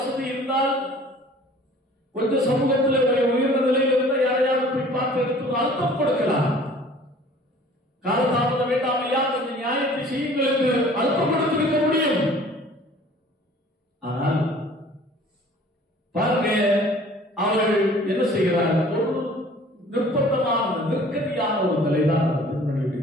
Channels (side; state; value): both; normal; correlation 0.50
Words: இருந்தால், கொஞ்சம் சமூகத்தில் உயர்ந்த நிலையில் இருந்தால் யாரையாவது போய் பார்த்து எடுத்து அழுத்தம் கொடுக்கலாம். காலதாமதம் வேண்டாம் ஐயா, கொஞ்சம் நியாயத்தை செய்யுங்கள் என்று அழுத்தம் கொடுத்திருக்க முடியும். ஆனால் பாருங்க, அவர்கள் என்ன செய்கிறார்? ஒரு நிர்பந்தமான, நெருக்கடியான ஒரு நிலைதான் அந்த